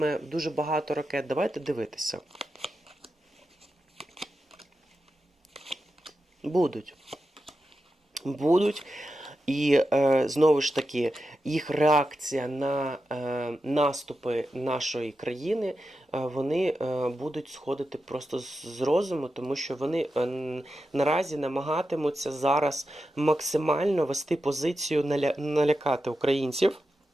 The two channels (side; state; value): both; normal; correlation 0.90